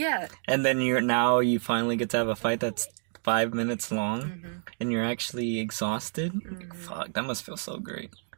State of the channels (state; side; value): silent; left; 59 dB below the other